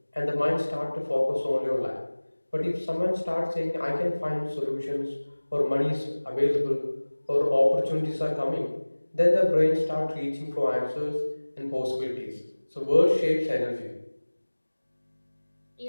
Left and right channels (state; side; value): inverted; both; correlation -1.00